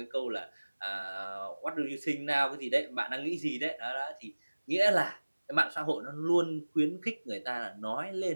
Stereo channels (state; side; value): inverted; both; correlation -1.00